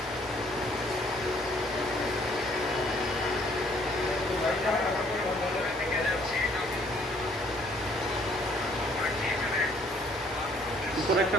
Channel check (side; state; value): both; normal; correlation 0.62